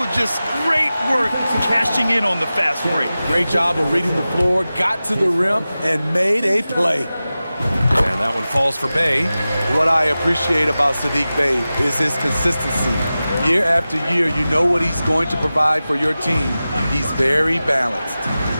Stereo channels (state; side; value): inverted; both; correlation -0.95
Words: Just great work cashing in on the fast break. Great job of reading the floor, got to the rim, and made a play. And that one falls for Bey. What I appreciate about Saddiq Bey is his consistency. Year after year, you know what he's going to provide for your team. He's very balanced.